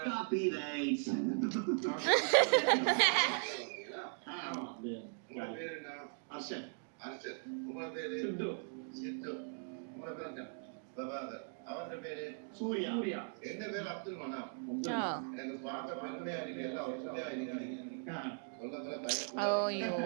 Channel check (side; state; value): left; silent; 52 dB below the other